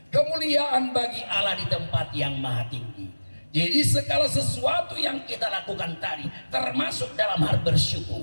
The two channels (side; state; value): both; inverted; correlation -1.00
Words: Kemuliaan bagi Allah di tempat yang maha tinggi. Jadi segala sesuatu yang kita lakukan tadi, termasuk dalam hal